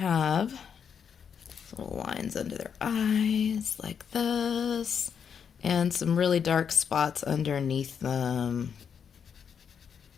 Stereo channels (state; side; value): quieter; right; 7.2 dB